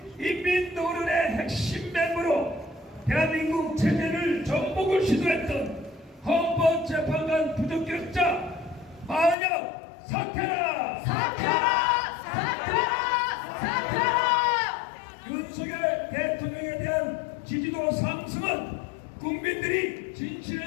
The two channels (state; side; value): drops out; right; at 9.3 s